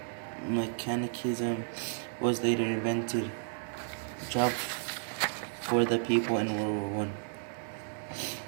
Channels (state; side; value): silent; left; digital silence